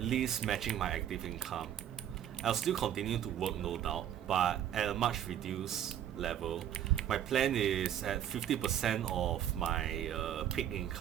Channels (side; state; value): left; quieter; 10.4 dB